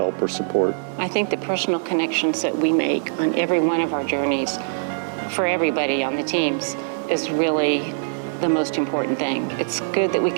or support. I think the personal connections that we make on every one of our journeys for everybody on the teams is really the most important thing. It's good that we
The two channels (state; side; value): silent; left; digital silence